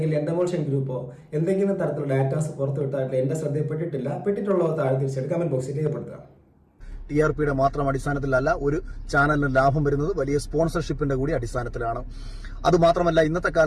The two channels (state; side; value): identical; both; correlation 1.00